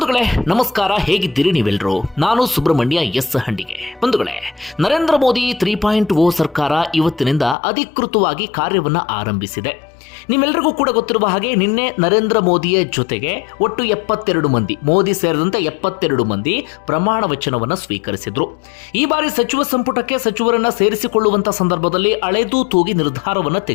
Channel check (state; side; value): drops out; right; at 7.6 s